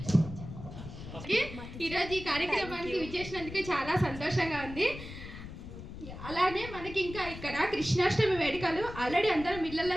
ఈరోజు ఈ కార్యక్రమానికి విచ్చేసినందుకు చాలా సంతోషంగా ఉంది. అలానే మనకి ఇంకా ఇక్కడ కృష్ణాష్టమి వేడుకలు ఆల్రెడీ అందరం ఇళ్లలో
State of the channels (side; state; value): left; noise; rumble, 12 dB below the sound